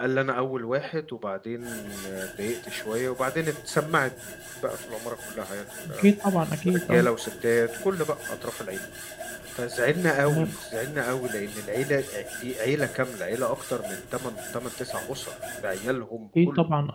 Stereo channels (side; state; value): both; identical; correlation 1.00